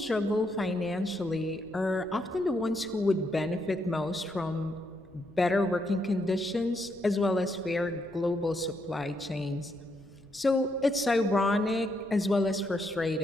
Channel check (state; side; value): noise; left; rumble, 26 dB below the sound